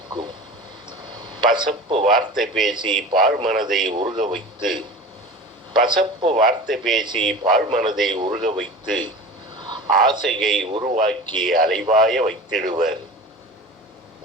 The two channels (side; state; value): both; normal; correlation 0.35